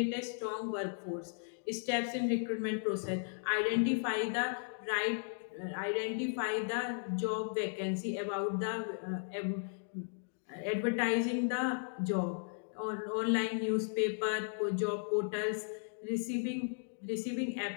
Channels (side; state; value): right; silent; digital silence